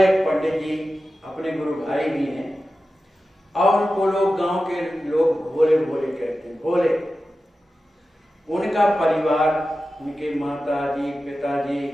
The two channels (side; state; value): both; normal; correlation 0.93